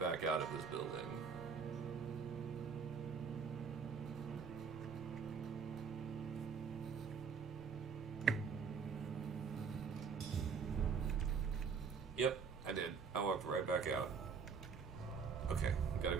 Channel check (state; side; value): quieter; left; 5.9 dB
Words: out of this building. Yep, I did. I walked right back out. Okay, gotta